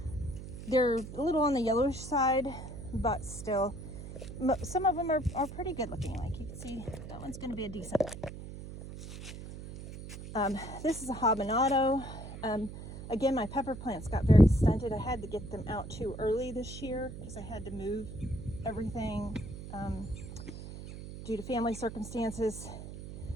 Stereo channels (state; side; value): noise; right; hum, 11 dB below the sound